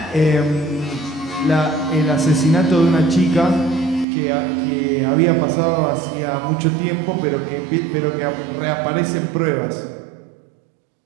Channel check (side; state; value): left; drops out; at 4.0 s